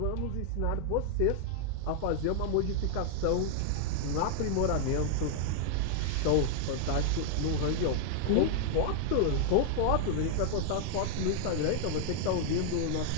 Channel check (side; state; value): both; different; correlation -0.01